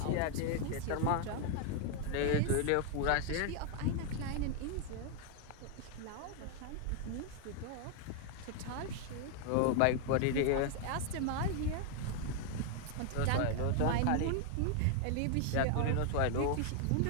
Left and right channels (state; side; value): different; both; correlation 0.00